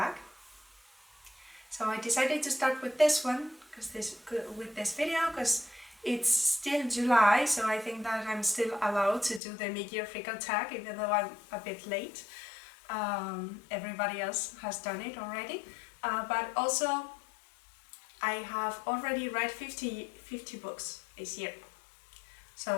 So I decided to start with this one, with this video, because it's still July, so I think that I'm still allowed to do the mid-year freak out tag, even though I'm a bit late. Everybody else has done it already, but also I have already read 50 books this year.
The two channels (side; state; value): right; drops out; at 9.4 s